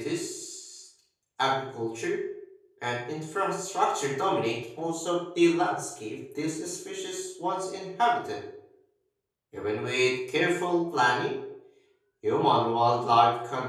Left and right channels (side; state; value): both; identical; correlation 1.00